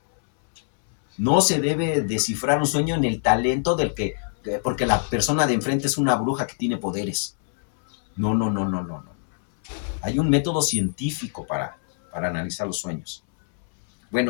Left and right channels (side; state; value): right; silent; 63 dB below the other